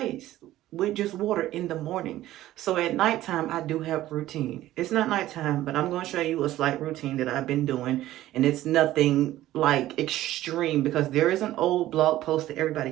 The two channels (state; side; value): quieter; left; 14.7 dB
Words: with just water in the morning. So at nighttime, I do have routine. It's not nighttime, but I'm going to show you a slight routine that I've been doing. And it's nothing like extreme, because there is an old blog post that everybody